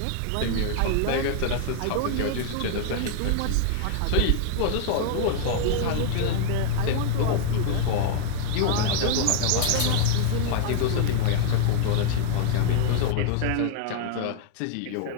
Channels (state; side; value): different; both; correlation 0.00